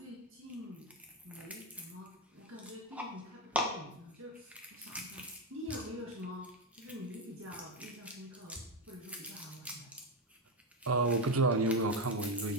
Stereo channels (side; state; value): both; normal; correlation 0.10